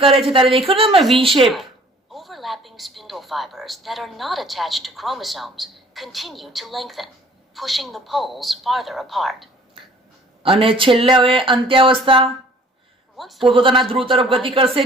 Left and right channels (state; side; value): normal; both; correlation 0.53